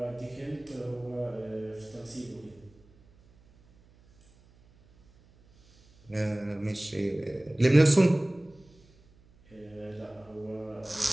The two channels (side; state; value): right; noise; hum, 28 dB below the sound